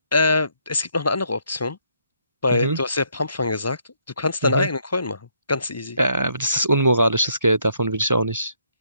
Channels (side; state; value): both; inverted; correlation -0.71